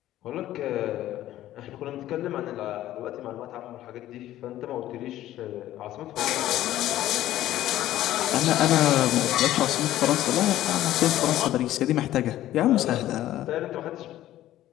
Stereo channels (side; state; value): right; quieter; 13.8 dB